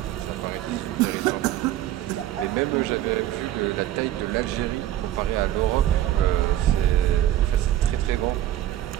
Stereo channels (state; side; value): quieter; left; 13.0 dB